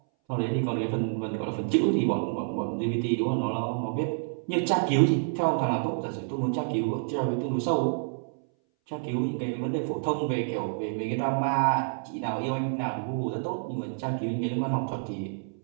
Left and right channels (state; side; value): silent; left; 59 dB below the other